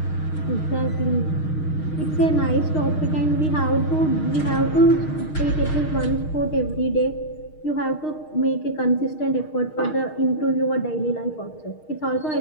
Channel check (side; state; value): right; late; 6.5 ms